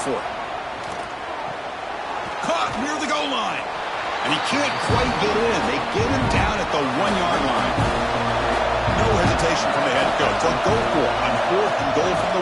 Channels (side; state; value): both; identical; correlation 1.00